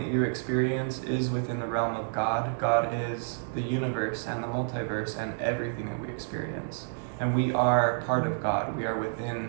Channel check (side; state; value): left; silent; digital silence